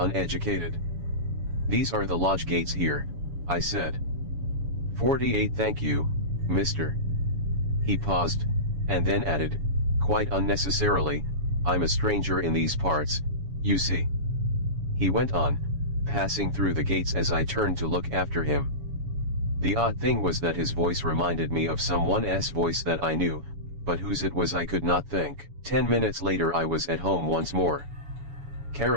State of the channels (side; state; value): left; late; 7.1 ms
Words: These are the lodge gates here, I said. 48 Thank you, mister. He paused, and then added, quite unnecessarily, I'm a stranger in these parts, you see. He went on, passing through the gates as I turned to look after him. The odd thing was that his voice reminded me of someone's voice that I knew, but whose it was I could not think. 10 minutes later I was at home once more.